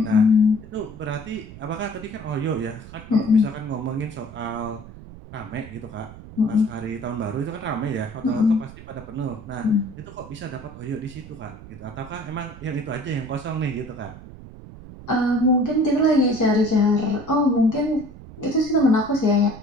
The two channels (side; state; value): right; noise; rumble, 16 dB below the sound